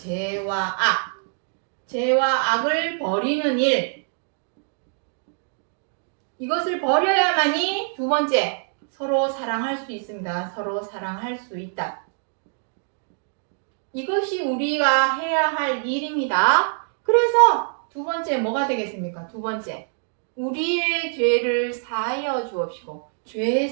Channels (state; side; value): silent; left; 62 dB below the other